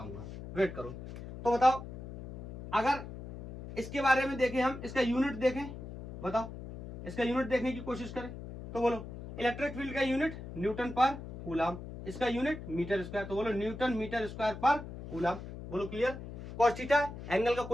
वेट करो। तो बताओ, अगर इसके बारे में देखें हम, इसका यूनिट देखें, बताओ इसका यूनिट देखने की कोशिश करें तो बोलो इलेक्ट्रिक फील्ड का यूनिट न्यूटन पर कूलम, इसका यूनिट मीटर स्क्वायर, तो बोलो Newton metre square per coulomb. बोलो क्लियर। कॉस थीटा एंगल का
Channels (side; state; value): left; noise; hum, 11 dB below the sound